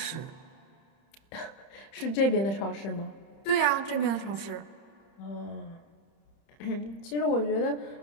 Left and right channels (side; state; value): right; late; 30 ms